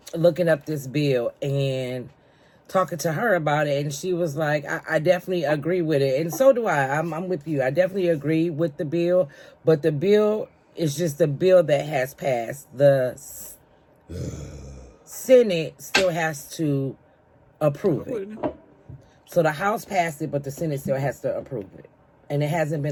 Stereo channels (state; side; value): identical; both; correlation 1.00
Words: looking up this bill and talking to her about it, and she was like, I definitely agree with it. And so do I. I'm with you. I definitely agree with the bill, but the bill is just a bill that has passed. The Senate still has to approve it. So the House passed it, but the Senate still has to approve it. And it hasn't